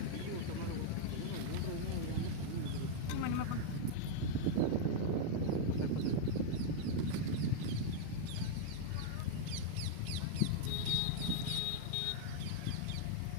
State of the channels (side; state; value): both; different; correlation -0.01